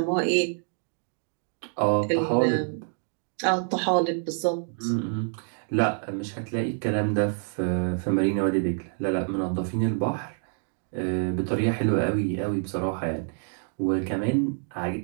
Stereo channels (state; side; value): silent; left; 60 dB below the other